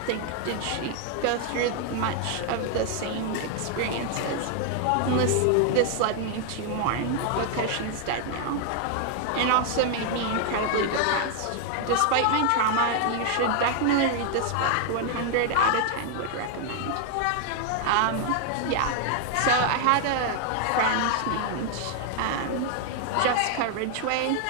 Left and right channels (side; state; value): both; different; correlation 0.00